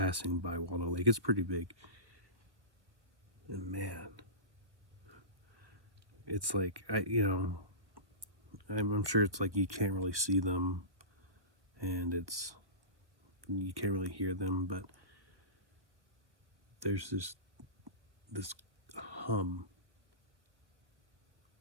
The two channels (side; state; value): left; late; 1.1 ms